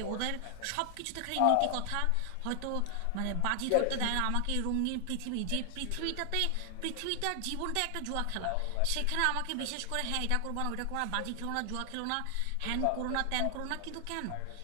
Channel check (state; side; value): different; both; correlation 0.00